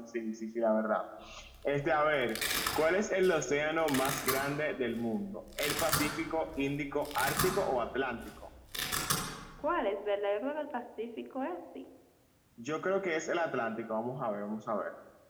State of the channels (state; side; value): identical; both; correlation 1.00